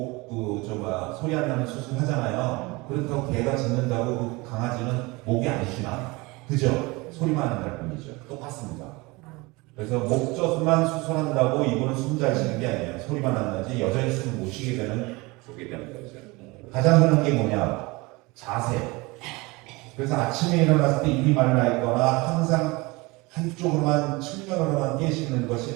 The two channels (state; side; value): quieter; left; 24.2 dB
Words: 소리 안 나는 수술 하잖아요. 그렇다고 개가 짖는다고 그 강아지는 목이 안 쉬나? 그죠? 소리만 안 날 뿐이죠. 똑같습니다. 그래서 목젖만 수술한다고 이분은 숨 잘 쉬는 게 아니에요. 소리만 안 나지 여전히 숨을 못 쉬게 되는 거죠. 가장 흔한 게 뭐냐? 자세. 그래서 아침에 일어났을 때 입이 말라 있거나 항상 한쪽으로만 측면으로만 깨시는